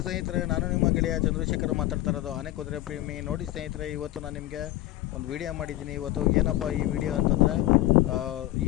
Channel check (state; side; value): quieter; right; 15.8 dB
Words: ಸ್ನೇಹಿತರೆ, ನಾನು ನಿಮ್ಮ ಗೆಳೆಯ ಚಂದ್ರಶೇಖರ್ ಮಾತಾಡ್ತಾ ಇರೋದು ಆನೆ ಕುದುರೆ ಪ್ರೇಮಿ. ನೋಡಿ ಸ್ನೇಹಿತರೆ, ಇವತ್ತು ನಾನು ನಿಮಗೆ ಒಂದು ವಿಡಿಯೋ ಮಾಡಿದ್ದೀನಿ. ಇವತ್ತು ಏನಪ್ಪ ಈ ವಿಡಿಯೋ ಅಂತಂದರೆ,